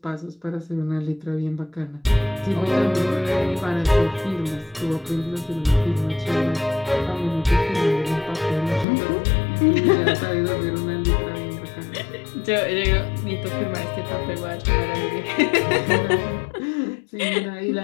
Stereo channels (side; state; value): right; drops out; at 8.8 s